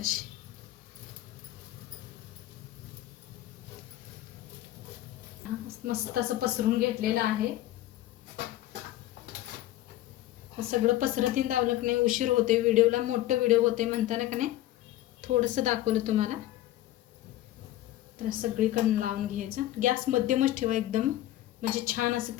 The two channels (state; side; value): quieter; right; 14.6 dB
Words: मस्त असं पसरून घेतलेलं आहे. सगळं पसरतीन दावलं की नाही उशीर होते व्हिडिओला, मोठं व्हिडिओ होते म्हणताना का नाही थोडंसं दाखवलं तुम्हाला. तर सगळीकडून लावून घ्यायचं. गॅस मध्यमच ठेवा एकदम, म्हणजे छान असं